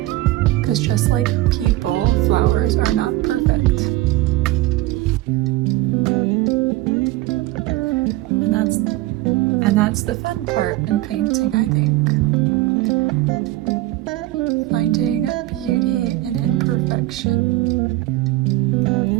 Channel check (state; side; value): quieter; left; 17.2 dB